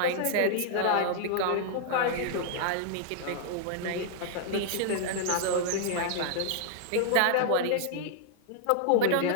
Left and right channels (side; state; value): both; different; correlation -0.01